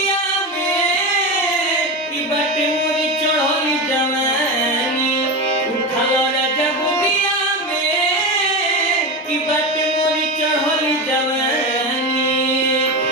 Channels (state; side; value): normal; both; correlation 0.20